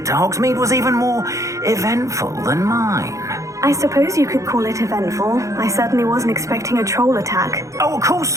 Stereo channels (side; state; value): left; late; 0.15 ms